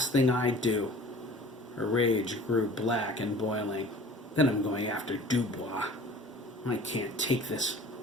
thing I do." Her rage grew black and boiling. "Then I'm going after Dubois. I can't take this.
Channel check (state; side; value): normal; both; correlation 0.45